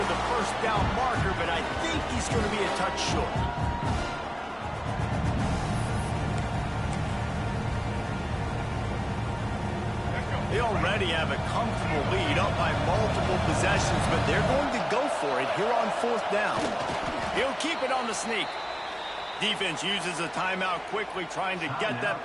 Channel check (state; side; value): identical; both; correlation 1.00